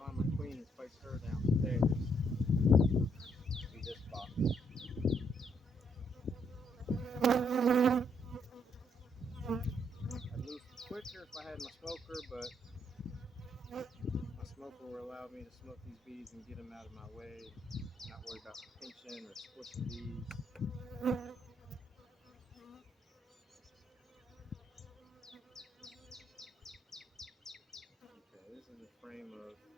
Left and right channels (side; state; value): both; normal; correlation 0.72